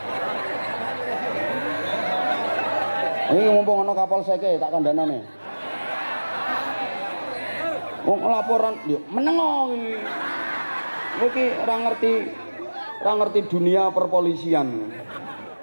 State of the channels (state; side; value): inverted; both; correlation -1.00